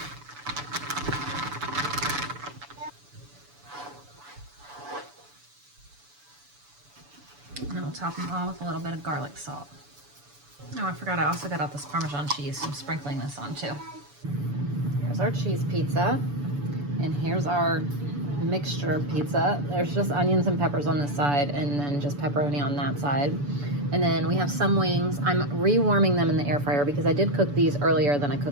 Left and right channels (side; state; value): left; late; 6.9 ms